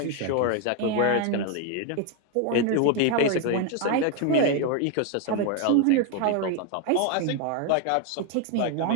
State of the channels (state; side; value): different; both; correlation 0.01